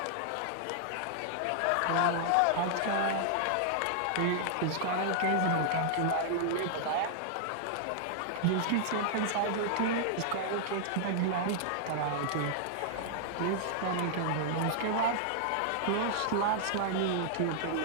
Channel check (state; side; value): different; both; correlation -0.01